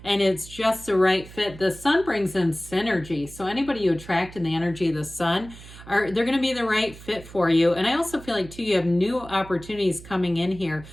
and it's just the right fit. The Sun brings in synergy. So anybody you attract in the energy of the Sun, they're going to be the right fit for you. And I also feel like too, you have new opportunities coming in here.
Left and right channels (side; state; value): right; noise; hum, 17 dB below the sound